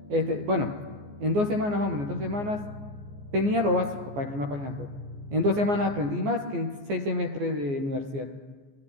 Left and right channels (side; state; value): left; late; 14 ms